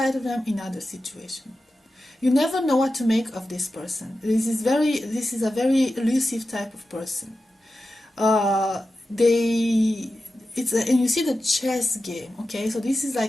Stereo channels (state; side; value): normal; both; correlation 0.92